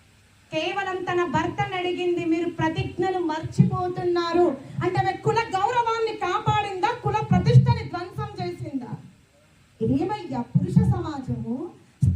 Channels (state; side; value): identical; both; correlation 1.00